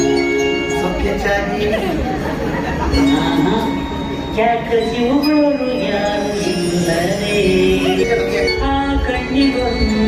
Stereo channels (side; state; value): both; identical; correlation 1.00